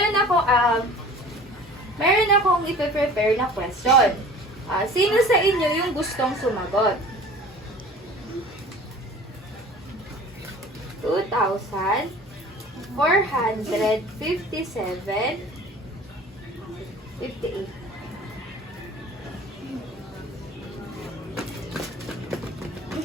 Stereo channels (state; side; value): normal; both; correlation 0.44